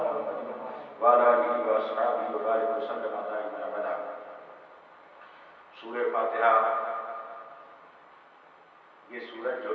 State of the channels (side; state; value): both; identical; correlation 1.00